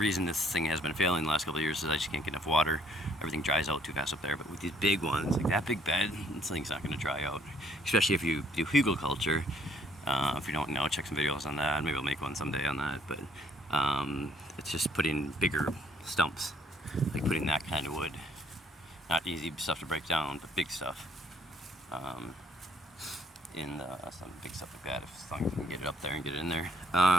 this thing has been failing the last couple of years is I just can't get enough water. Everything dries out too fast up there, but with these big ones, like that big bed, this thing's not going to dry out, especially if you do hugelkultur. If you don't know, check some videos on that. Maybe I'll make one someday on that, but it's just putting bigger stumps, like putting that kind of wood, not easy stuff to break down, but big stuff, in some big stuff like that, as long as you can get it up there and get it in there.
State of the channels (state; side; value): normal; both; correlation 0.64